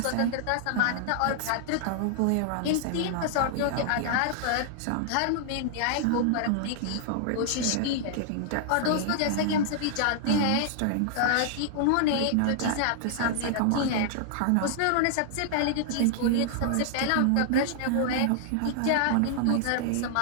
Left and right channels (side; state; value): both; different; correlation -0.01